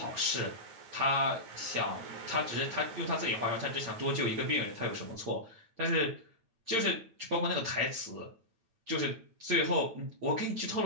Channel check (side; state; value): left; late; 8.7 ms